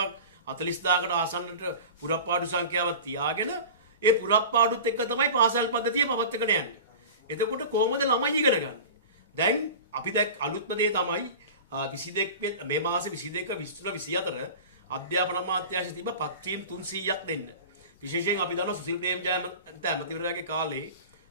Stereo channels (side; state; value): both; inverted; correlation -0.34